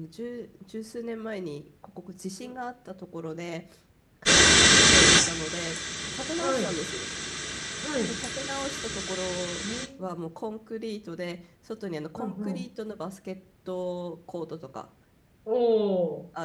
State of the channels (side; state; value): both; identical; correlation 1.00